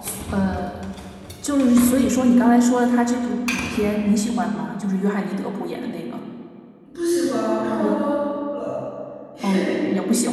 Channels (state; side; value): identical; both; correlation 1.00